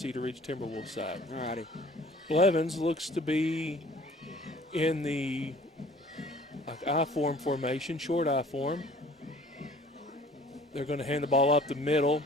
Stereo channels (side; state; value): both; normal; correlation 0.51